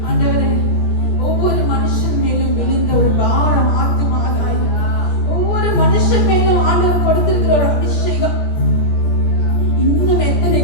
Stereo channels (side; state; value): right; late; 17 ms